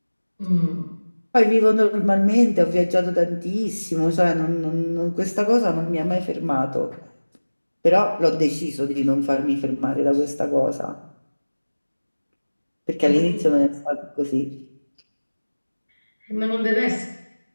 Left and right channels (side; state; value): both; inverted; correlation -1.00